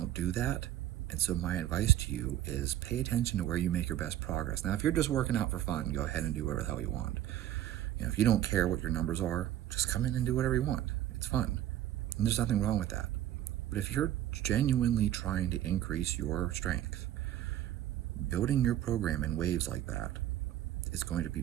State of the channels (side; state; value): left; quieter; 12.5 dB